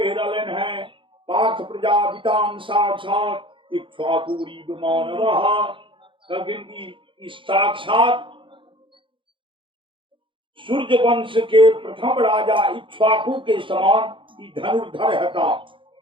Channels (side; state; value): left; late; 0.25 ms